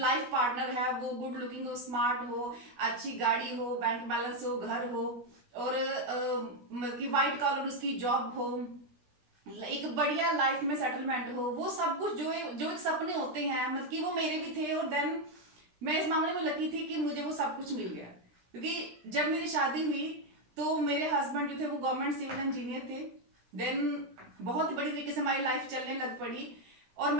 पार्टनर है वो गुड लुकिंग हो, स्मार्ट हो, अच्छी गाड़ी हो, बैंक बैलेंस हो, घर हो, और मतलब कि वाइट कॉलर उसकी जॉब हो, एक बढ़िया लाइफ में सेटलमेंट हो, वो सब कुछ जो एक सपने होते हैं, मतलब कि वो मेरे भी थे। और देन मैं इस मामले में लकी थी कि मुझे वो सब कुछ मिल गया, क्योंकि जब मेरी शादी हुई तो मेरे हस्बैंड जो थे वो गवर्नमेंट सिविल इंजीनियर थे। देन बहुत ही बड़ी तरीके से हमारी लाइफ चलने लग पड़ी और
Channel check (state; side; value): late; left; 16 ms